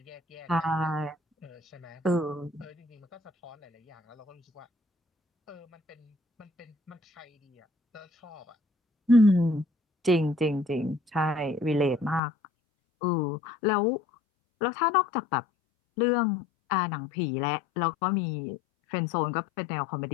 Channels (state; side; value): drops out; right; at 12.2 s